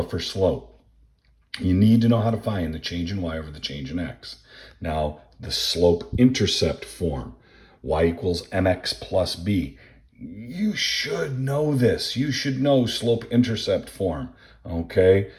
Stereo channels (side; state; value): both; identical; correlation 1.00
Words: for slope. You need to know how to find the change in y over the change in x. Now, the slope-intercept form, y equals mx plus b. You should know this. You should know slope-intercept form, okay?